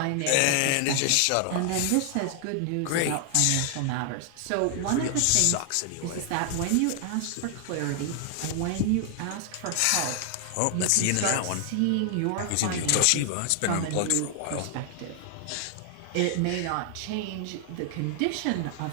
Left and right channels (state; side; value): different; both; correlation 0.00